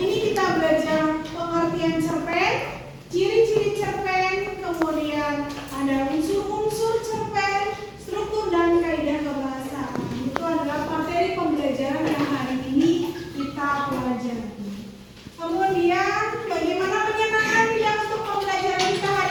ini kita belajar pengertian cerpen, ciri-ciri cerpen, kemudian ada unsur-unsur cerpen, struktur dan kaidah kebahasaan. Itu adalah materi pembelajaran yang hari ini kita pelajari. Kemudian bagaimana menyenangkan tidak untuk pembelajaran kita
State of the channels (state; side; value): identical; both; correlation 1.00